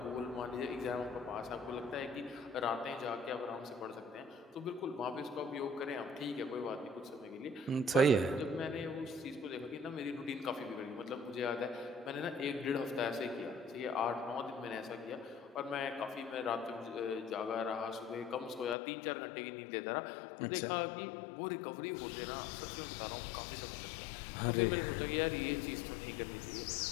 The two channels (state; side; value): drops out; right; at 18.8 s